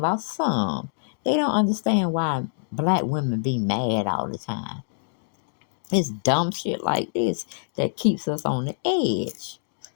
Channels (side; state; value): right; silent; digital silence